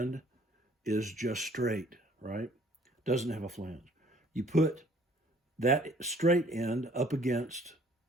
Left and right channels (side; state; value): both; normal; correlation 0.57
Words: is just straight, right? Doesn't have a flange. You put that straight end up against,